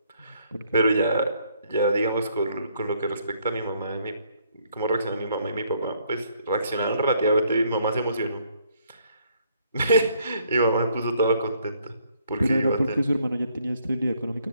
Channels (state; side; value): inverted; both; correlation -0.68